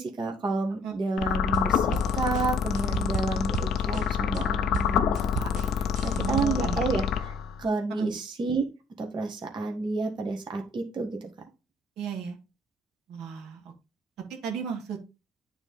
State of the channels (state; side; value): normal; both; correlation 0.60